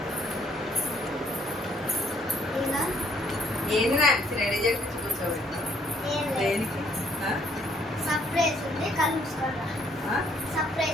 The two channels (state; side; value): normal; both; correlation 0.66